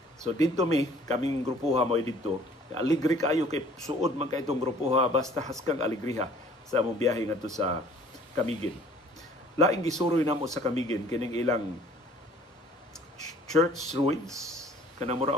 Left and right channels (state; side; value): normal; both; correlation 0.54